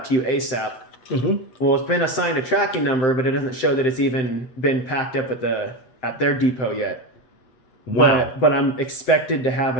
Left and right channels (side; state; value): right; late; 7.8 ms